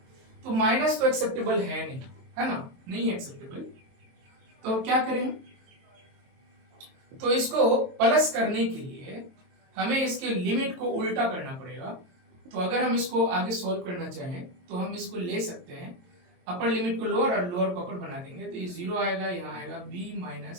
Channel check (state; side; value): late; left; 22 ms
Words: तो माइनस तो एक्सेप्टेबल है नहीं, है ना, नहीं है एक्सेप्टेबल। तो क्या करें, तो इसको प्लस करने के लिए हमें इसके लिमिट को उल्टा करना पड़ेगा। तो अगर हम इसको आगे सॉल्व करना चाहें तो हम इसको ले सकते हैं, अपर लिमिट को लोअर और लोअर को अपर बना देंगे। तो ये 0 आएगा, यहाँ आएगा b